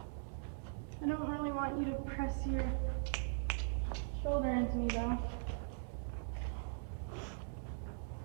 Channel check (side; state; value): left; silent; digital silence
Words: I don't really want you to press your shoulder into me though.